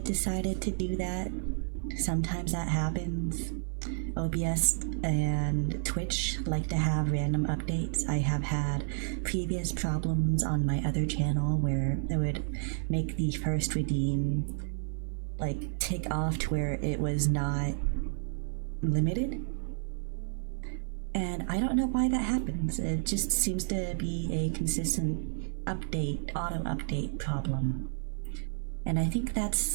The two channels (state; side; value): silent; left; 57 dB below the other